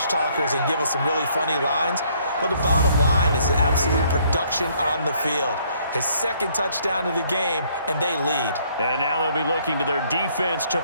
talkers and give us some really funny lines. But the bottom line is absolute production on the field. His 2nd touchdown of the game, and they lead. And now they'll be looking to their defense to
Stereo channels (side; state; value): both; inverted; correlation -0.65